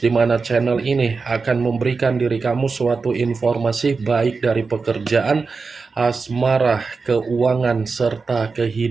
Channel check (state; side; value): quieter; left; 4.5 dB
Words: mana channel ini akan memberikan diri kamu suatu informasi baik dari pekerjaan, asmara, keuangan, serta